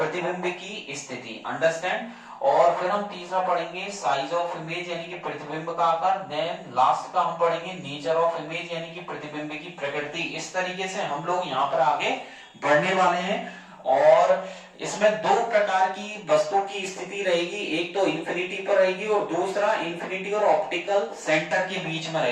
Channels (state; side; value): identical; both; correlation 1.00